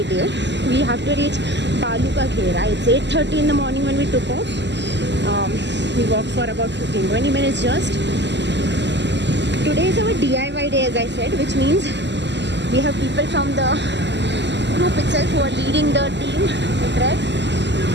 day. We have to reach Balu Ka Ghera. It's 8:30 in the morning when we took off. We walked for about 15-20 minutes just. today is our DIY day, as I said, which means we have people from the group itself who are leading the team, the trek,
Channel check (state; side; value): late; left; 0.51 ms